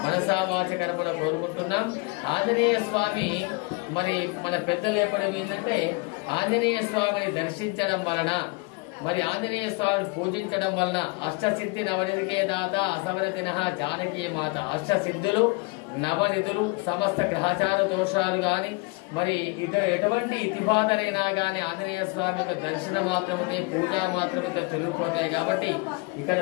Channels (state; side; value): quieter; right; 27.7 dB